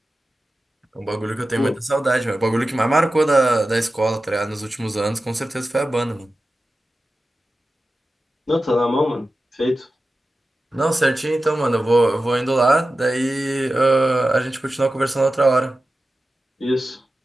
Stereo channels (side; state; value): both; normal; correlation 0.94